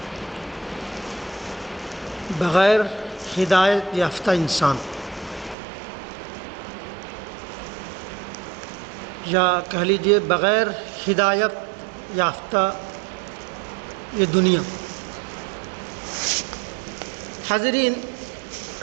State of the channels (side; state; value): left; drops out; at 5.6 s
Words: بغیر ہدایت یافتہ انسان، یا کہہ لیجیے بغیر ہدایت یافتہ یہ دنیا۔ حاضرین،